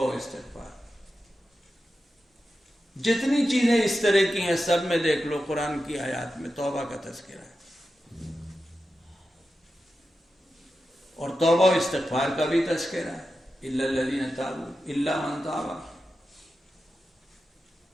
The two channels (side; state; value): both; normal; correlation 0.91